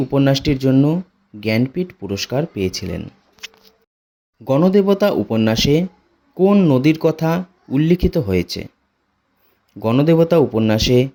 উপন্যাসটির জন্য জ্ঞানপীঠ পুরস্কার পেয়েছিলেন। গণদেবতা উপন্যাসে কোন নদীর কথা উল্লিখিত হয়েছে? গণদেবতা উপন্যাসে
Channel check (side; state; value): both; identical; correlation 1.00